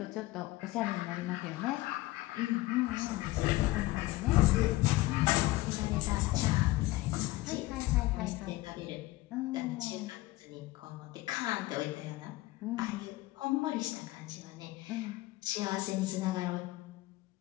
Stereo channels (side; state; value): right; quieter; 18.7 dB